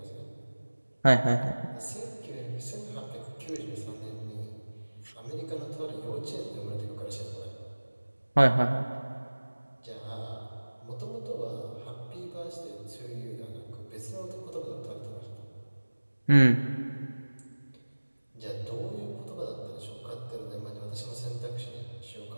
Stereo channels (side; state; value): both; inverted; correlation -1.00